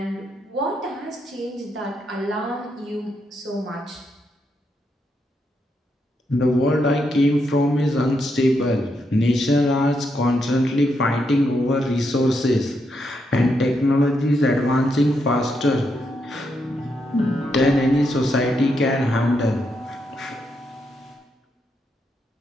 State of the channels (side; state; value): both; normal; correlation 0.80